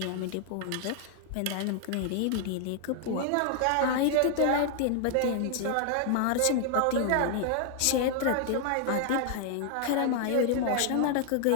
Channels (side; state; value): both; different; correlation 0.00